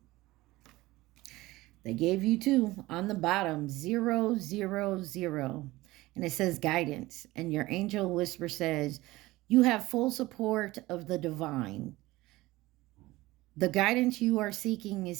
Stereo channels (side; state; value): left; quieter; 19.0 dB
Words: They gave you 2 on the bottom, 000. And it says guidance. And your angel whisper says, you have full support of the divine. The guidance you are seeking